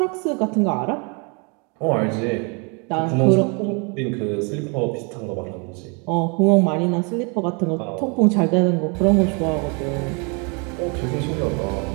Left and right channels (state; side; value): quieter; left; 33.7 dB